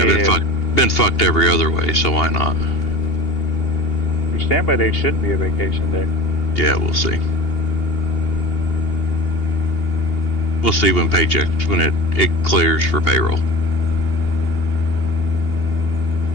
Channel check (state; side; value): late; right; 2.8 ms